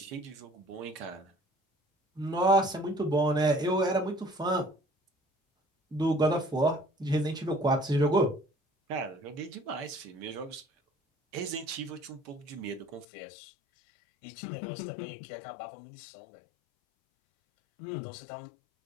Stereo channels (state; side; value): drops out; right; at 13.1 s